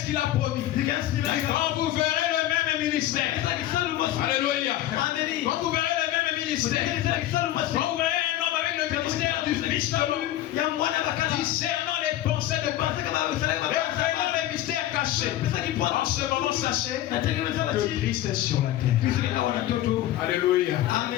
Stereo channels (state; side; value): quieter; right; 13.8 dB